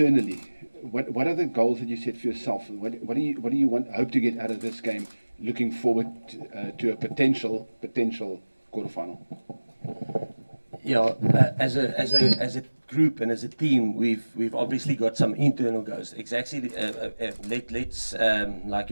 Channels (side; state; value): both; inverted; correlation -1.00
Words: what are the goals that you set for yourself? What do you hope to get out of this game? Looking forward to a potential quarterfinal. Yeah, as a group and as a team, we've obviously got some internal goals. Exactly. Let's like